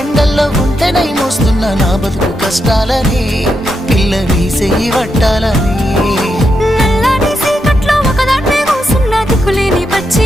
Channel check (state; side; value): normal; both; correlation 0.83